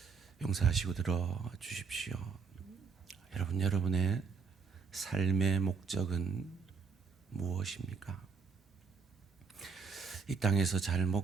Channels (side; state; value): left; quieter; 5.1 dB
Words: 용서하시고 들어주십시오. 여러분의 삶의 목적은 무엇입니까? 이 땅에서 잘